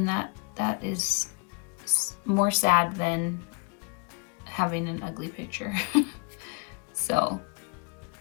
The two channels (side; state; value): right; quieter; 34.6 dB